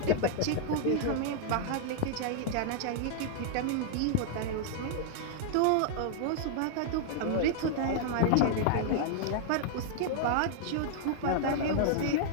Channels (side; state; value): both; different; correlation -0.01